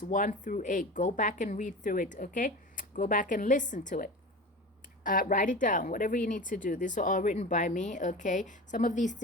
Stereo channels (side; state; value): both; normal; correlation 0.32